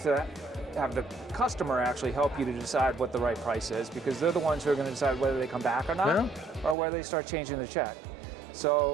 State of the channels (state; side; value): drops out; left; at 6.8 s